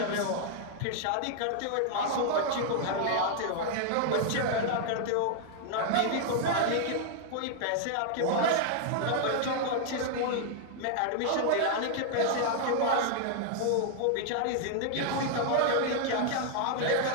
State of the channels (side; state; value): both; different; correlation 0.00